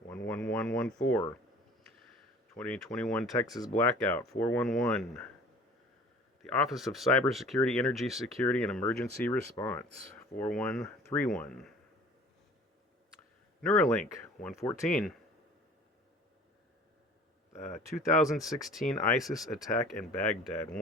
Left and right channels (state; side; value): normal; both; correlation 0.47